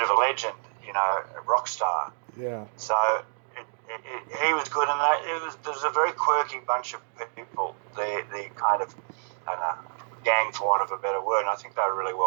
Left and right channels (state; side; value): silent; left; digital silence